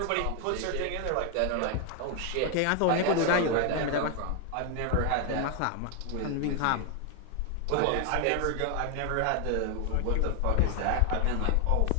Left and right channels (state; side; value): different; both; correlation 0.01